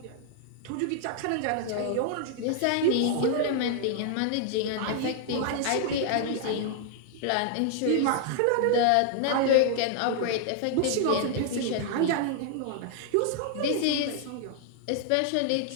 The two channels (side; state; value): both; different; correlation 0.00